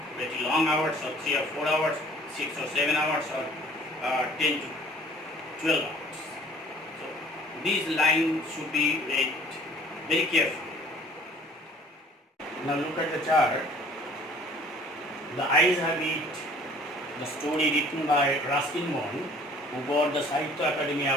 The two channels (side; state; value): both; normal; correlation 0.53